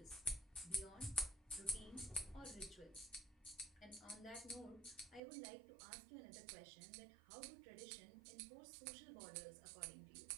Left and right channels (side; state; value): left; drops out; at 5.2 s